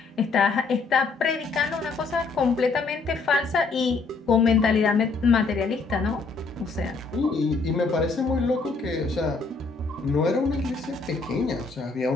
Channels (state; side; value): quieter; right; 4.2 dB